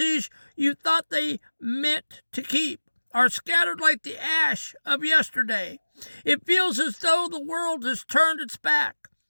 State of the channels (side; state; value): both; inverted; correlation -1.00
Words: you thought they meant to keep are scattered like the ash of yesterday. It feels as though the world has turned its back,